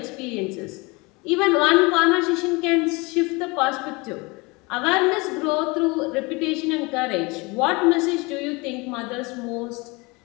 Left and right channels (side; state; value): right; quieter; 26.1 dB